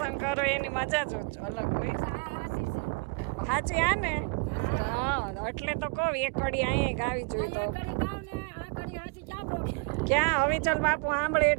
કરો એની મજા જ અલગ હોય. સાચી આ ને? હા, એટલે તો કહું એક ઘડી અહીંયા ગાવી જોઈએ. ક્યાં હવિચલ બાપુ સાંભળે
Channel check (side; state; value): left; quieter; 31.1 dB